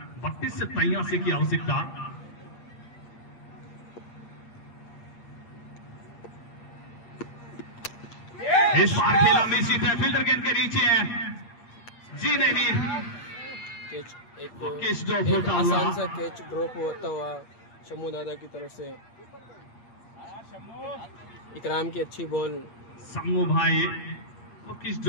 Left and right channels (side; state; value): right; late; 8.5 ms